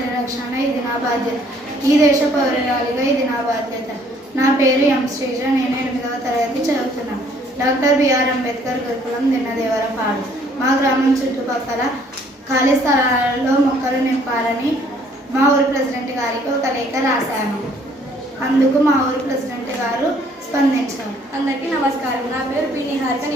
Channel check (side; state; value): both; normal; correlation 0.61